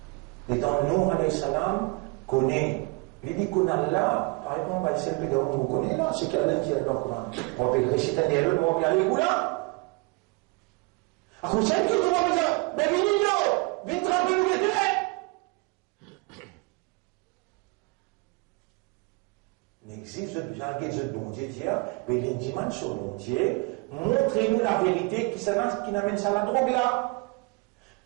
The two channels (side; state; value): left; quieter; 27.7 dB